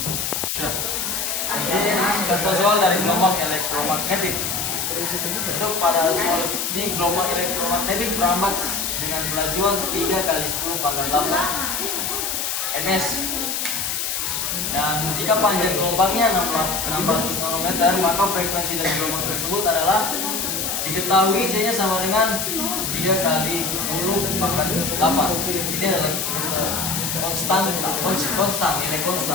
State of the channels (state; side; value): noise; left; hiss, 1 dB below the sound